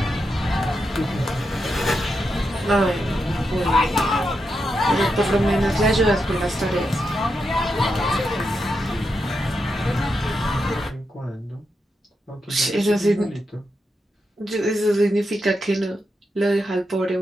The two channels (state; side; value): normal; both; correlation 0.85